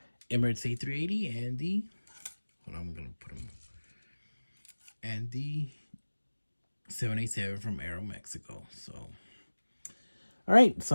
Emirates A380 and the, hold on, I'm gonna put them, and the 787 from Aeromexico. So all right,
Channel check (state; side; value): inverted; both; correlation -1.00